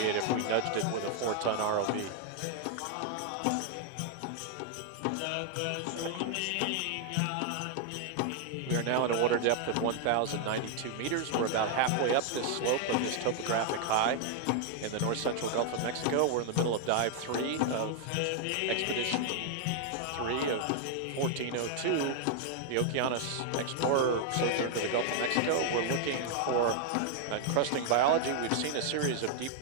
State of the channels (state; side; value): different; both; correlation 0.00